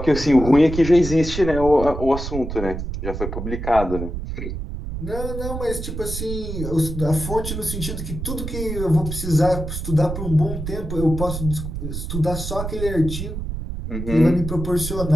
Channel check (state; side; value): noise; right; rumble, 6 dB below the sound